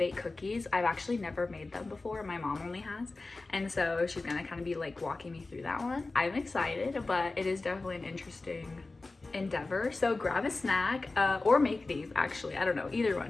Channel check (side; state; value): right; quieter; 3.4 dB